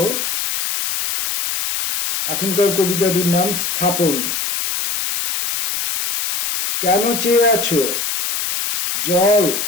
এখনকার কবিতাটির নাম স্থাপন। কেন চেয়ে আছো জল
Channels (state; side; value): noise; left; hiss, 2 dB below the sound